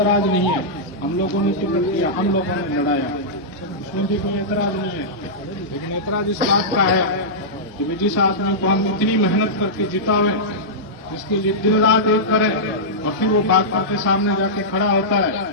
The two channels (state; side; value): normal; both; correlation -0.13